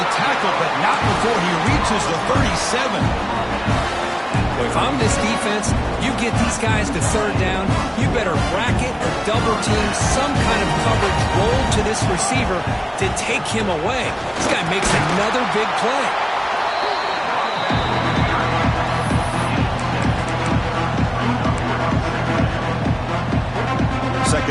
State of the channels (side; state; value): both; identical; correlation 1.00